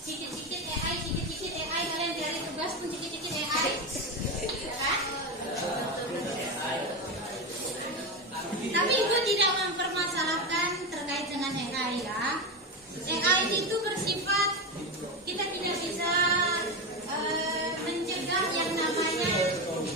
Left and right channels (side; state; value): both; normal; correlation 0.17